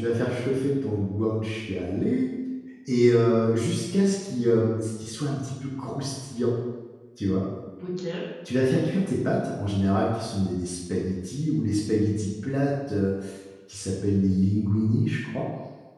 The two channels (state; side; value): identical; both; correlation 1.00